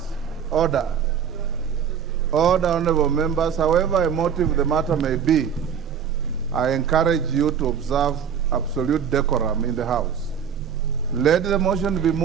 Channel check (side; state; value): left; quieter; 7.7 dB